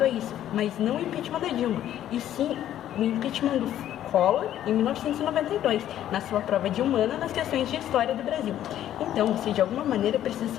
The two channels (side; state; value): right; quieter; 11.7 dB